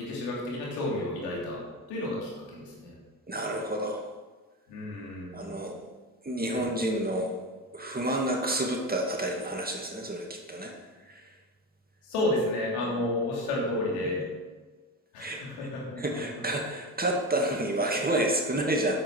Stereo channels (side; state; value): both; normal; correlation 0.21